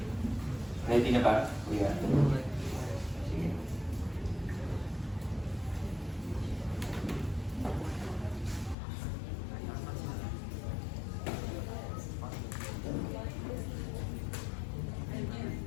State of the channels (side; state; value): right; drops out; at 8.8 s